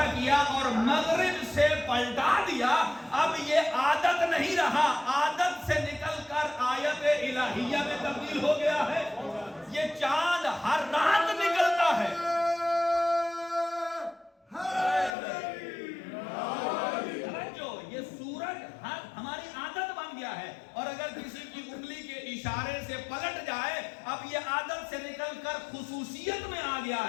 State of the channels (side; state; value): right; drops out; at 15.2 s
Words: کیا اور مغرب سے پلٹا دیا، اب یہ عادت نہیں رہا، عادت سے نکل کر آیت الہیہ میں تبدیل ہو گیا ہے. یہ چاند ہر رات نکلتا ہے، یہ سورج ہماری عادت بن گیا ہے، اور اگر کسی کی انگلی کے اشارے سے پلٹ جائے، اب یہ عادت سے نکل کر خصوصیت میں آ گیا